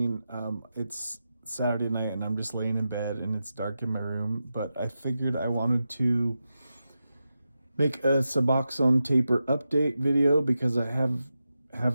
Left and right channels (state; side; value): inverted; both; correlation -0.90